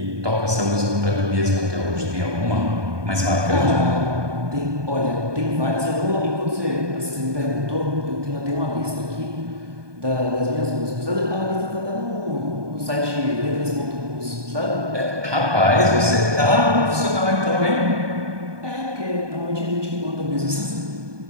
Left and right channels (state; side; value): late; left; 1.2 ms